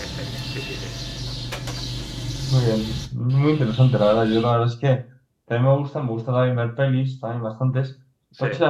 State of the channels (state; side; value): identical; both; correlation 1.00